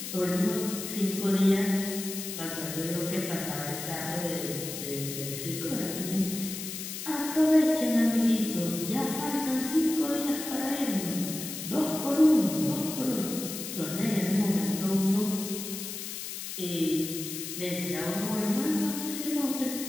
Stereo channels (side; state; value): left; noise; hiss, 7 dB below the sound